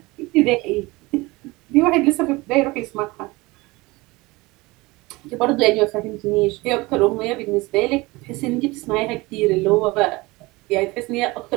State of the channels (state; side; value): quieter; left; 22.4 dB